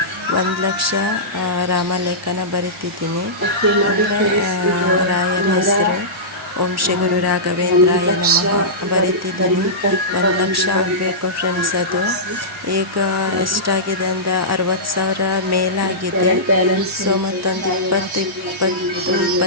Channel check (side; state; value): both; normal; correlation -0.17